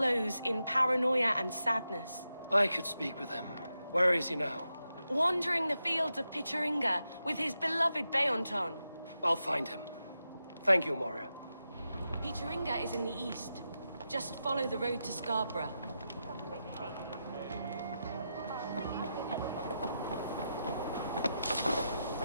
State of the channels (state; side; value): inverted; both; correlation -0.88